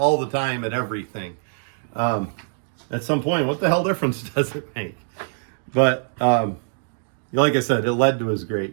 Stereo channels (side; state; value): left; silent; digital silence